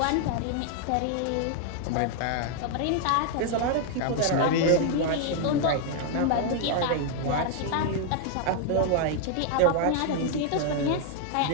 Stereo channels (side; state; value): both; different; correlation 0.00